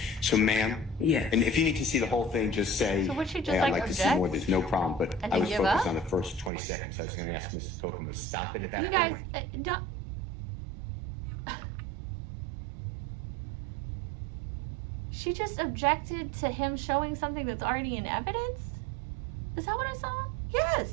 So, ma'am, Yes. and if you need to see the whole thing, just say, So would she just, hey, I'd like, like to see object? more. There's no problem. But And I then was give focused up? on the first 20 seconds. I was going to ask Mr. Kokomo to stop it at that You guys, point. don't. She just objected to him showing something that's already in evidence? Is that what I saw?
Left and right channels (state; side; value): drops out; left; at 6.5 s